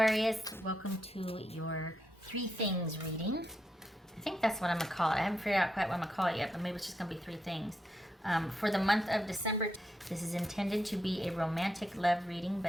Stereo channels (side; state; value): both; normal; correlation 0.82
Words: welcome to your three things reading. I think that's what I'm going to call it. I haven't figured out quite what I'm going to call it yet, but maybe it's just going to be three things. For the month of December, this is intended to be a romantic love reading,